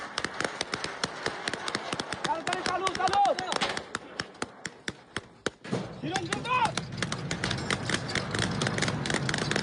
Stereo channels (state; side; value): identical; both; correlation 1.00